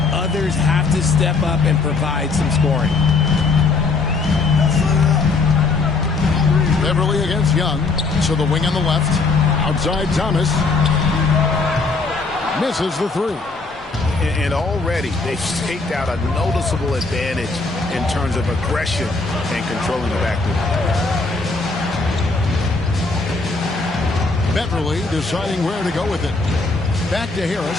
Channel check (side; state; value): right; quieter; 3.8 dB